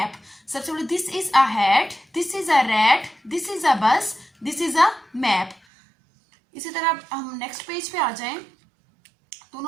सबसे पहले this is a hat, this is a rat, this is अ बस, दिस इज अ मैप। इसी तरह हम नेक्स्ट पेज पे आ जाएं तो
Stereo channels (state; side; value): drops out; left; at 5.6 s